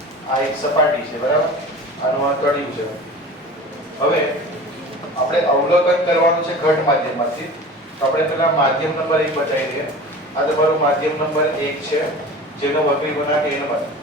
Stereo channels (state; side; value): normal; both; correlation 0.37